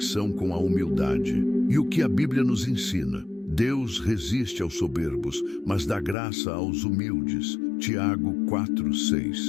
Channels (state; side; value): drops out; right; at 6.2 s